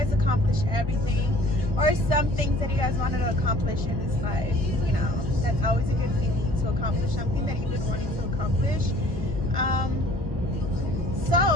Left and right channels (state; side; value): late; left; 1.2 ms